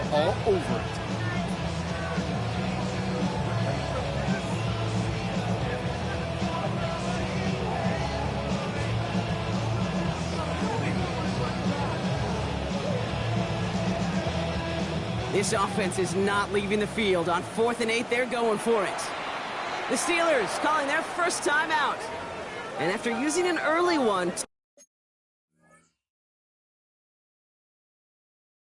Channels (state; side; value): identical; both; correlation 1.00